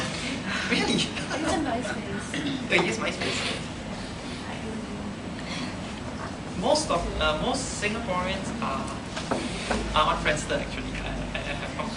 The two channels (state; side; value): identical; both; correlation 1.00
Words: Really? It's a MySpace. Oh, you use MySpace? Most Singaporeans are on Friendster actually. I have come